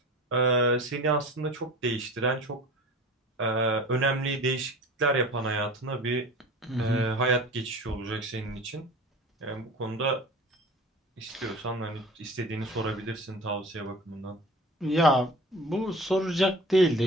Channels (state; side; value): normal; both; correlation 0.38